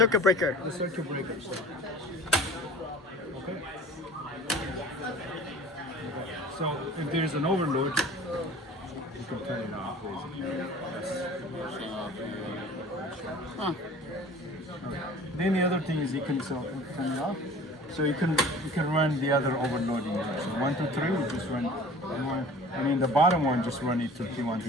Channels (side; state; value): both; normal; correlation 0.44